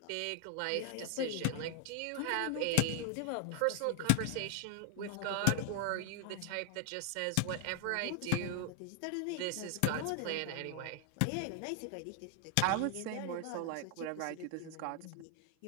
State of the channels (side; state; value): both; different; correlation 0.00